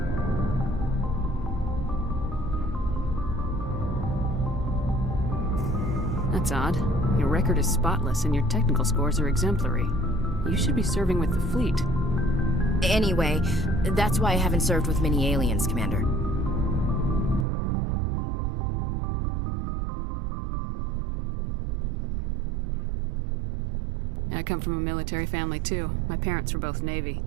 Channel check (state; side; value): drops out; left; at 17.4 s